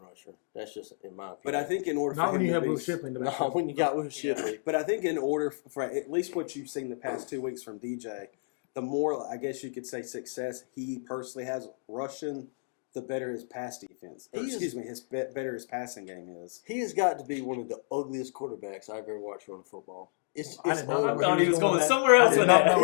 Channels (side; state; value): right; silent; digital silence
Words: That's just in my opinion. But I think in order Not for when him you to have be, Will Shipley in the back. no, when you got Will Shipley. But I think in order for at least what you've seen the past 2 weeks from DJ, the more I guess you could say success he personally has rushing, the better his pass defense. Better his passing game is. He has got to be one of the ugliest quarterbacks I've ever watched run football. It's I did not know I ugly. thought he was going that. somewhere else I did with not that. know